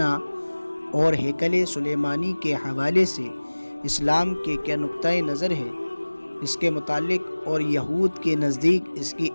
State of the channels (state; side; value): inverted; both; correlation -1.00